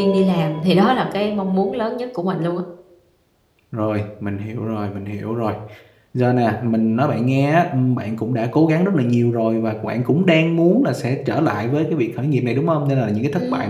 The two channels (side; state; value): both; identical; correlation 1.00